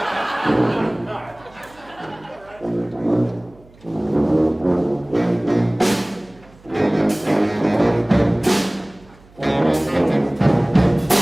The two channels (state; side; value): noise; right; hum, 27 dB below the sound